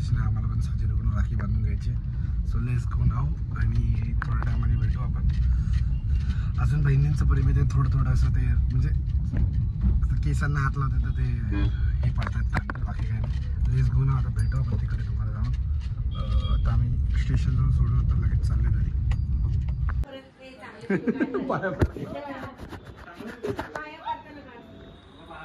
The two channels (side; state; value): both; identical; correlation 1.00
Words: नाही. आम्हाला पण साजरीकडून राखी बांधून घ्यायची. सो लेट्स गो नाव. आणि थोड्या टायमाने भेटू आपण. अजून बहिणींचं प्रेम आहे ते थोडं असं ते म्हणजे केसांना हात लावते तर ते हे पडतात. बाकी काय नाही. लेट्स गो नाव. आता भेटू आपण तिकडे तुम्हाला जाऊन. आता आम्ही स्टेशनजवळ सोडून आता लगेच चालले घरी.